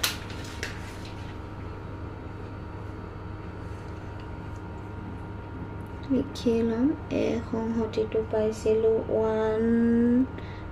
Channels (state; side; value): identical; both; correlation 1.00